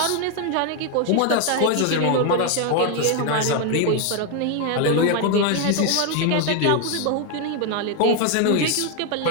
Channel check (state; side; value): different; both; correlation 0.01